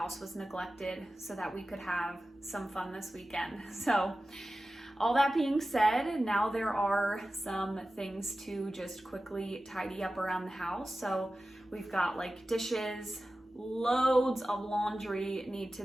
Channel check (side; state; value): both; normal; correlation 0.95